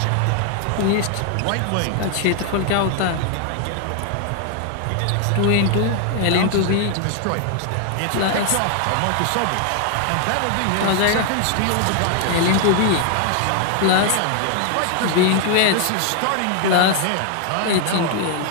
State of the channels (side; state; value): both; different; correlation 0.00